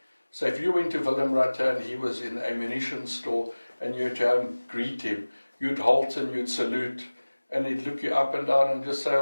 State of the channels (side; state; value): both; inverted; correlation -1.00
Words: So if you went to Willem Rutte and he was in the ammunition store and you had to go and greet him, you'd halt and you'd salute, and he'd look you up and down and just say,